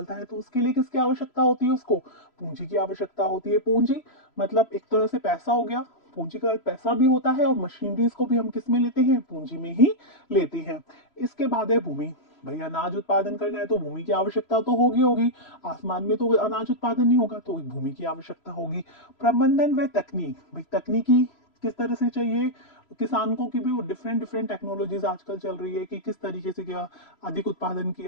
है, तो उसके लिए किसकी आवश्यकता होती है, उसको पूंजी की आवश्यकता होती है। पूंजी मतलब एक तरह से पैसा हो गया, पूंजी का पैसा भी होता है, और मशीनरीज को भी हम किस में लेते हैं, पूंजी में ही लेते हैं। इसके बाद है भूमि। भाई अनाज उत्पादन करना है तो भूमि की आवश्यकता तो होगी होगी, आसमान में तो अनाज उत्पादन नहीं होगा, तो भूमि की आवश्यकता होगी। प्रबंधन व तकनीक, भाई तकनीकी किस तरह से चाहिए किसान को, कि भी वो डिफरेंट डिफरेंट टेक्नोलॉजीज आजकल चल रही है कि किस तरीके से क्या अधिक उत्पादन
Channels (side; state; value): right; late; 3.0 ms